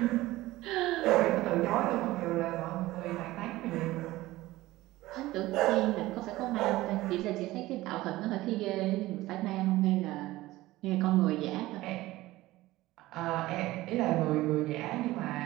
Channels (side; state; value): left; quieter; 17.6 dB